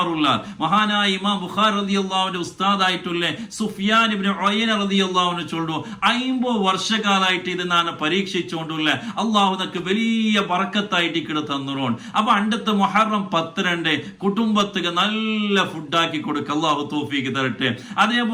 മഹാനായ ഇമാം ബുഖാരി റളിയല്ലാഹുവിന്റെ ഉസ്താദായിട്ടുള്ള സുഫിയാൻ ഇബ്നു ഉയൈന റളിയല്ലാഹു അൻഹു ചൊല്ലു 50 വർഷക്കാലായിട്ട് ഇത് ഞാൻ പരീക്ഷിച്ചുകൊണ്ടുള്ള അല്ലാഹു നമുക്ക് വലിയ ബറക്കത്തായിട്ട് ഇക്കടെ തന്നുറോൺ. അപ്പൊ അണ്ടത്തെ മുഹറം 10 കുടുംബത്തിക്ക് നല്ല ഫുഡാക്കി കൊടുക്ക അല്ലാഹു തൗഫീഖ് തരട്ടെ.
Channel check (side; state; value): both; identical; correlation 1.00